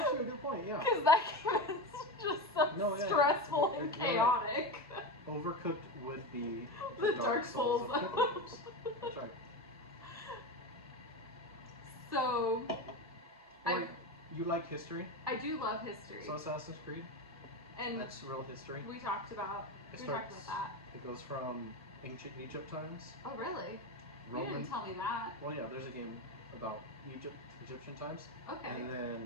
a good point. Yeah. Because that game is just so stressful and You're right. chaotic. Overcooked would be The Dark Souls. of cooking games. That's right. So, You like history? I do love history. So Assassin's Creed, And that's real history. we talked about that. It goes from ancient Egypt times. Oh, really? You Roman. didn't tell me that. Well, yeah, there's a game about Egyptian times. Okay. And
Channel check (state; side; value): normal; both; correlation 0.20